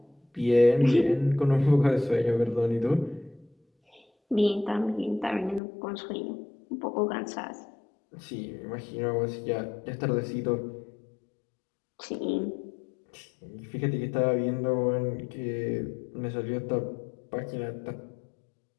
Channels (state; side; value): drops out; right; at 5.6 s